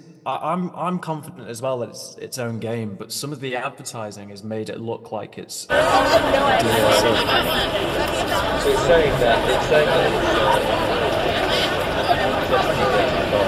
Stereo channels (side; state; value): both; identical; correlation 1.00